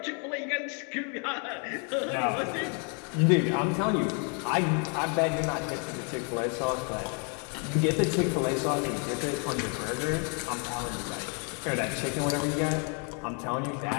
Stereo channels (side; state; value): right; quieter; 38.0 dB